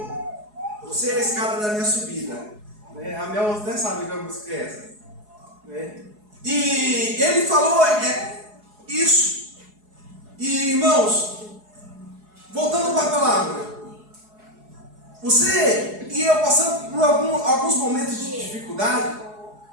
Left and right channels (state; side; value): late; left; 4.7 ms